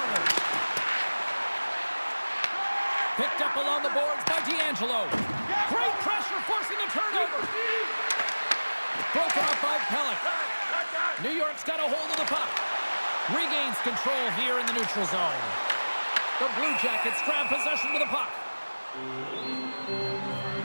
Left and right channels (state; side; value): inverted; both; correlation -1.00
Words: Picked up along the boards by D'Angelo. Great pressure forcing a turnover. Broken up by Pelech. New York's got a hold of the puck. Regains control here in the neutral zone. The Blue Jackets grab possession to the puck.